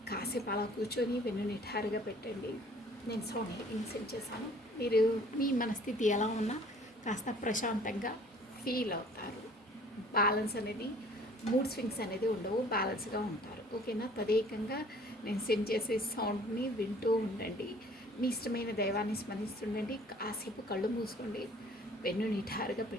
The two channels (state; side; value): normal; both; correlation 0.53